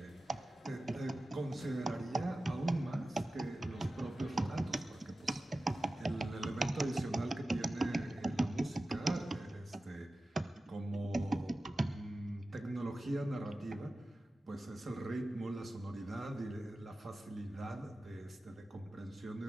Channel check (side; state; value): both; normal; correlation 0.94